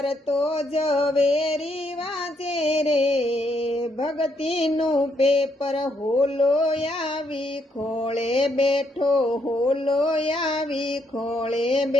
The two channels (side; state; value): both; normal; correlation 0.74